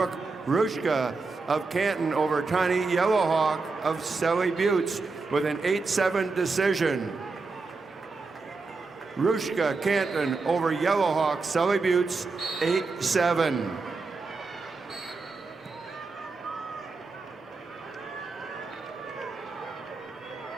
Rushka of Canton over Tani Yellowhawk of Sally Buttes with an 8-7 decision. Rushka Canton over Yellowhawk Sally Buttes 8-7.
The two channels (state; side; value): quieter; left; 4.0 dB